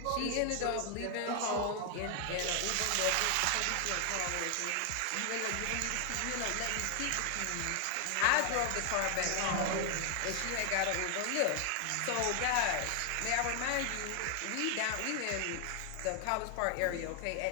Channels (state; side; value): different; both; correlation 0.00